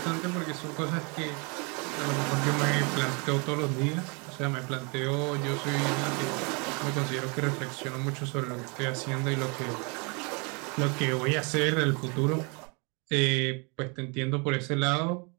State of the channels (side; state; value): left; quieter; 32.0 dB